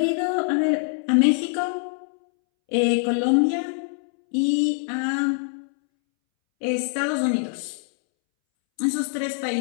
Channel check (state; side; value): silent; right; 63 dB below the other